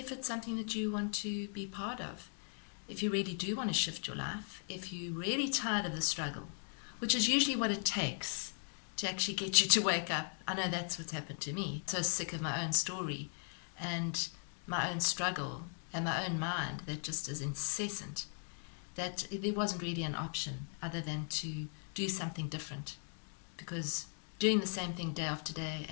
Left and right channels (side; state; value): right; silent; 52 dB below the other